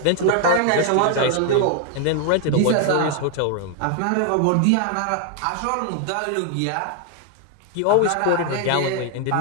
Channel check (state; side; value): different; both; correlation 0.00